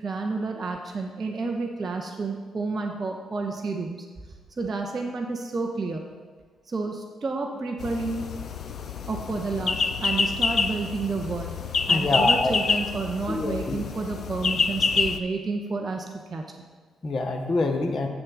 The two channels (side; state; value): both; normal; correlation 0.82